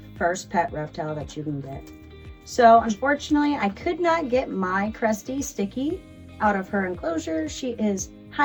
first pet reptile that you can get. So unfortunately, I could not get my Cresty Sticky out of her enclosure. She is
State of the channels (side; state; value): both; identical; correlation 1.00